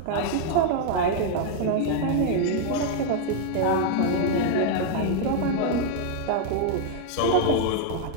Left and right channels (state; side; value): different; both; correlation 0.00